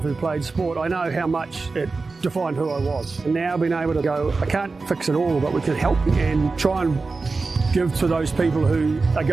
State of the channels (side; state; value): left; quieter; 4.0 dB